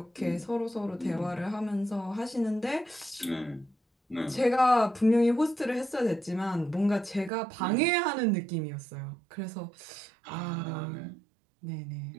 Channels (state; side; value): drops out; left; at 7.3 s